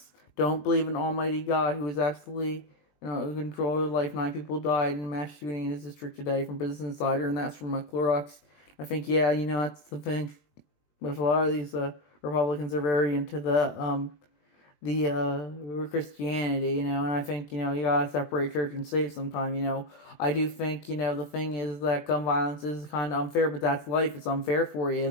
don't believe in Almighty God, who is absolutely in control of life. 9 people died in a mass shooting in his district today from Business Insider, and that's from Clorox. I think, yeah, that's the thing. With a lot of these Republicans are very into the Christianity, and I think, you gotta separate church and state sometime. I do think, the thing is that gun violence is kind of unfair, but that's life. It's unfair for you,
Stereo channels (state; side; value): late; right; 20 ms